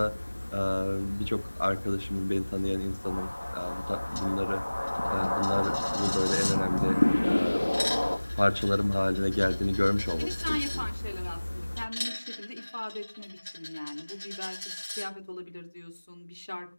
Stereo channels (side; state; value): both; inverted; correlation -1.00